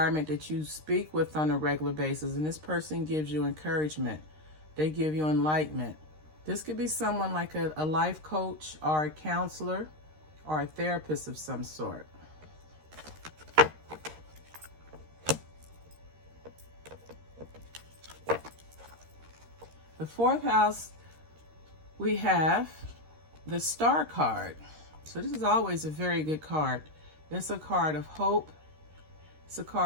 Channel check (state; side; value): late; left; 13 ms